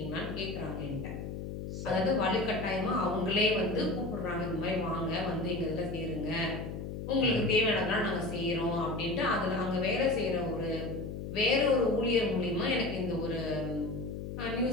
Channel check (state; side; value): noise; left; hum, 7 dB below the sound